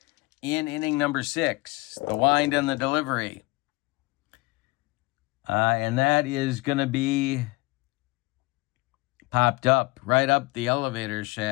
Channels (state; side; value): quieter; right; 23.4 dB